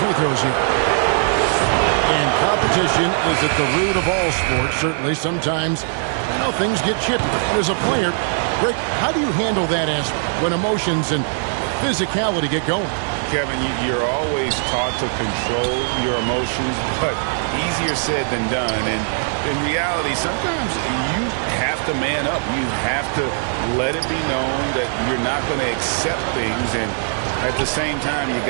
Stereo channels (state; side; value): silent; left; digital silence